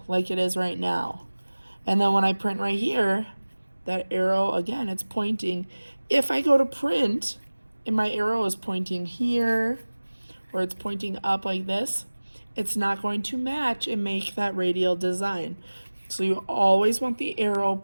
like it is right now. And then when I print right here, that arrow, again, it's pointing. If I go to print and my arrow is pointing here or it's pointing up like this, it's not going to match and make that radial design. So you always want the arrow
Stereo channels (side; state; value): both; inverted; correlation -1.00